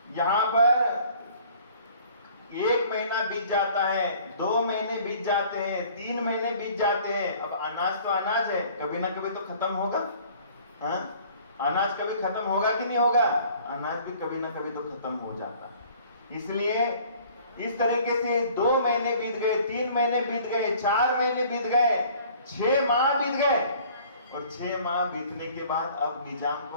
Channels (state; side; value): inverted; both; correlation -0.53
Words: यहां पर 1 महीना बीत जाता है, 2 महीने बीत जाते हैं, 3 महीने बीत जाते हैं, अब अनाज तो अनाज है, कभी ना कभी तो खत्म होगा। हाँ? अनाज कभी खत्म होगा कि नहीं होगा? अनाज भी कभी ना कभी तो खत्म हो जाता। इसलिए इस तरीके से 2 महीने बीत गए, 3 महीने बीत गए, 4 महीने बीत गए, 6 माह बीत गए। और 6 माह बीतने के बाद अब निजाम